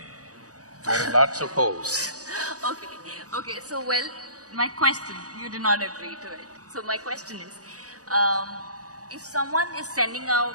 There are lots of holes. Okay, so my question, you did not agree to it. So my question is, if someone is sending out…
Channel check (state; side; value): late; left; 0.67 ms